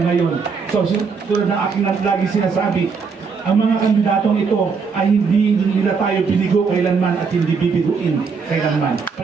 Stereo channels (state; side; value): quieter; left; 5.4 dB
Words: ngayon. So tulad ng aking lagi sinasabi, ang mga kandidatong ito ay hindi nila tayo binigo kailanman at hindi bibiguin kailanman.